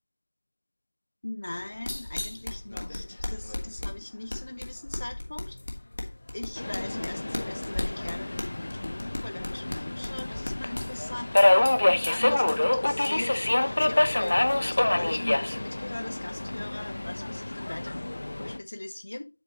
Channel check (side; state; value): both; inverted; correlation -1.00